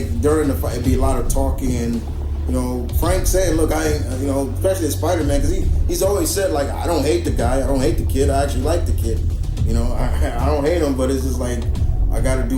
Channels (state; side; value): identical; both; correlation 1.00